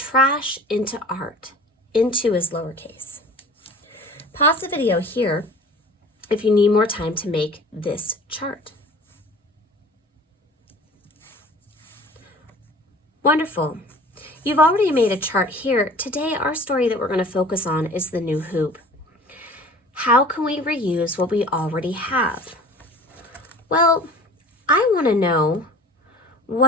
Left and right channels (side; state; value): both; normal; correlation 0.44